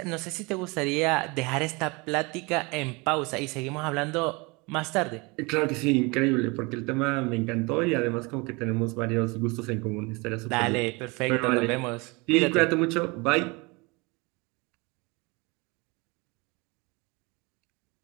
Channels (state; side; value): quieter; left; 26.9 dB